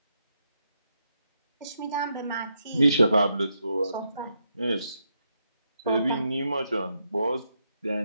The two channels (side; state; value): both; inverted; correlation -0.81